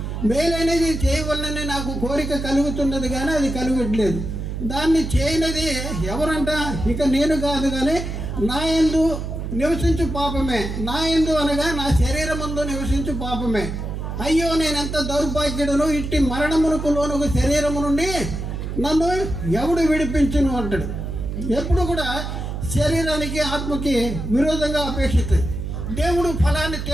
మేలైనది చేయవలనని నాకు కోరిక కలుగుతున్నది కానీ అది కలుగట్లేదు. దాన్ని చేయనిది ఎవరంట? ఇక నేను కాదు కానీ నా యందు నివసించు పాపమే. నా యందు అనగా నా శరీరమందు నివసించు పాపమే. అయ్యో నేనెంత దౌర్భాగ్యుడును, ఇట్టి మరణమునకు లోనుకు శరీరము నుండి నన్ను ఎవడు విడిపించును అంటాడు. ఎప్పుడు కూడా శరీరానికి ఆత్మకి విరోధంగా అపేక్షిస్తుంది. దేవుడు ఫలాన్ని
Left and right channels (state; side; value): noise; right; hum, 5 dB below the sound